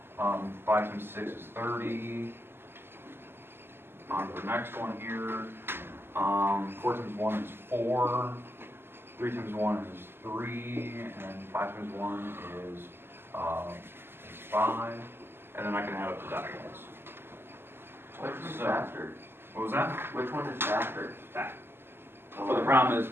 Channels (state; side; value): late; left; 0.11 ms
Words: 5 times 6 is 30. On to the next one here. 4 times 1 is 4, 3 times 1 is 3, and 5 times 1 is 5, and then I can add up the decimals. Which is So- faster? What was that? Which one is faster? That. But the problem is,